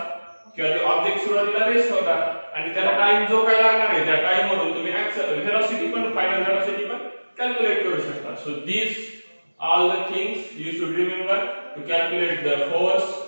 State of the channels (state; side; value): inverted; both; correlation -1.00